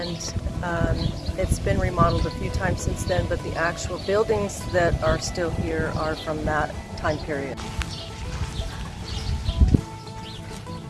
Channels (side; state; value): both; identical; correlation 1.00